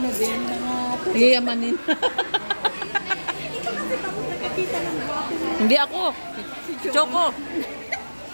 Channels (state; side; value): inverted; both; correlation -1.00